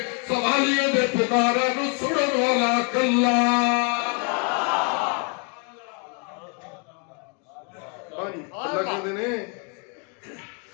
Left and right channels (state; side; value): quieter; right; 35.7 dB